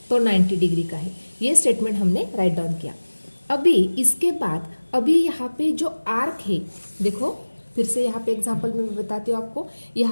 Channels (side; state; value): both; inverted; correlation -1.00